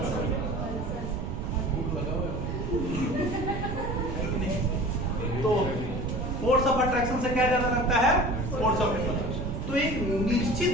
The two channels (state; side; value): noise; right; rumble, 4 dB below the sound